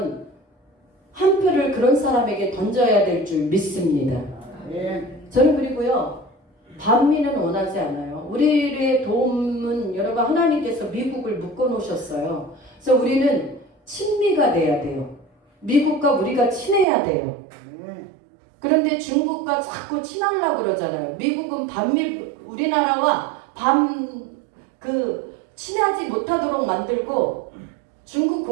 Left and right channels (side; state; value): left; drops out; at 16.9 s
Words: 한 표를 그런 사람에게 던져야 될 줄 믿습니다. 저는 그리고요 반미는 원하지 않아요. 우리의 도움은 여러분 하나님께서 미국을 묶어 놓으셨어요. 그래서 우리는 친미가 돼야 돼요. 미국과 우리가 친해야 돼요. 그런데 중국과 자꾸 친하려고 그러잖아요. 미국은 우리나라와 친하지 못하도록 만들고 중국